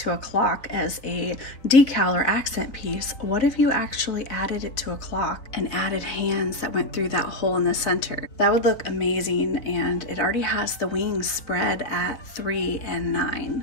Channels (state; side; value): late; right; 3.6 ms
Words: a clock as a decal or accent piece, what if you actually added it to a clock and added hands that went through that hole in the center? That would look amazing, and it already has the wings spread at 3 and